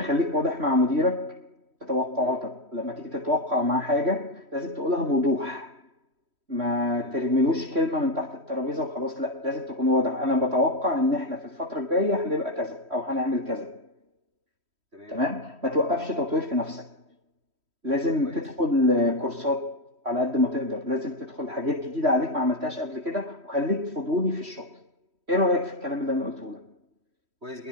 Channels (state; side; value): late; left; 3.1 ms